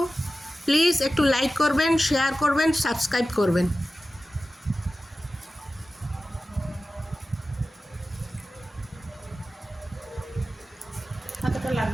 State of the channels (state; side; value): normal; both; correlation 0.94